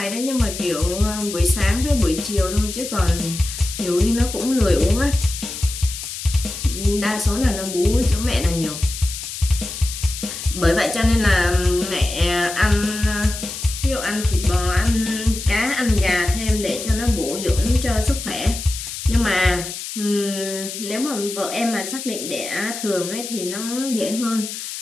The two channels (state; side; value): noise; left; hiss, 8 dB below the sound